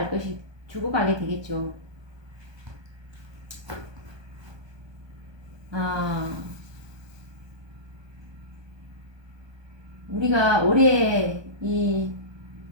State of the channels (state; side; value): late; left; 1.2 ms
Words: 되겠죠. 우리가 올해 이